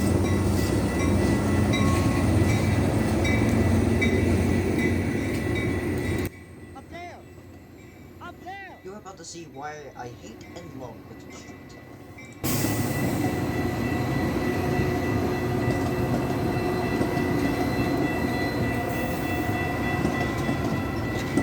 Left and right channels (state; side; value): identical; both; correlation 1.00